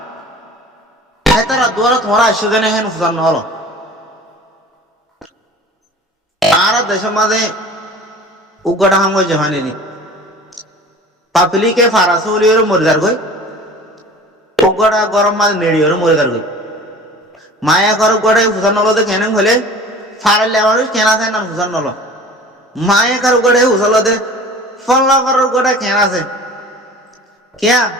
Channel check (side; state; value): both; normal; correlation 0.42